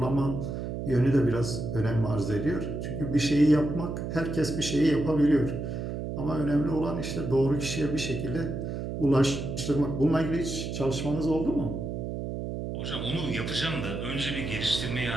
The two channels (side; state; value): right; noise; hum, 5 dB below the sound